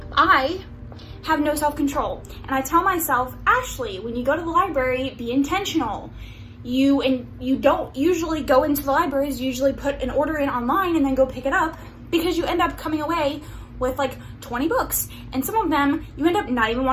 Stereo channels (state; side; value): identical; both; correlation 1.00